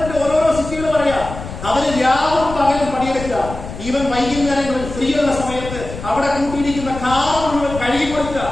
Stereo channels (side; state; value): left; noise; rumble, 10 dB below the sound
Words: ഓരോരോ സിറ്റികൾ പറയാ. അവര് രാവും പകലും പണിയെടുക്കുക. ഈവൻ വൈകുന്നേരങ്ങളിൽ ഫ്രീ ഉള്ള സമയത്ത് അവിടെ കൂട്ടിയിരിക്കുന്ന കാർ മുഴുവൻ കഴുകി കൊടുക്കുക